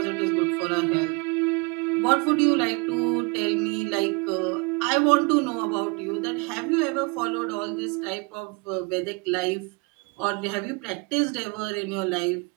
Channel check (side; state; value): left; quieter; 29.6 dB